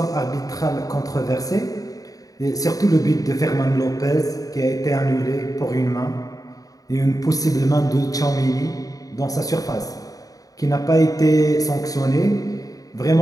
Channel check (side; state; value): right; late; 0.17 ms